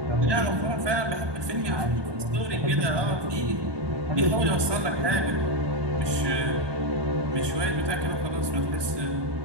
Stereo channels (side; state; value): left; late; 1.2 ms